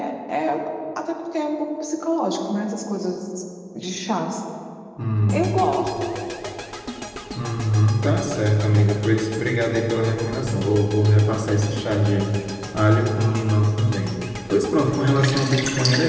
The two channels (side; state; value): both; identical; correlation 1.00